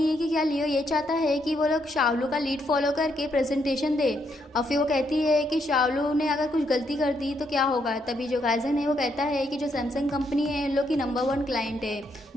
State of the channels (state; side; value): normal; both; correlation 0.76